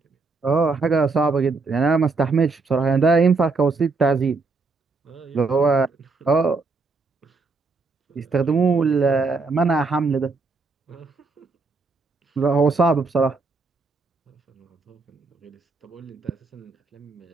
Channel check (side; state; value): left; quieter; 3.9 dB